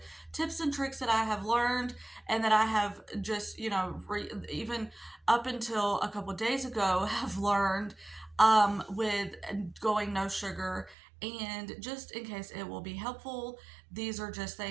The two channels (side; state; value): left; drops out; at 11.0 s